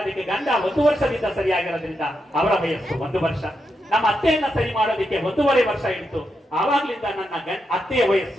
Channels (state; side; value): normal; both; correlation 0.84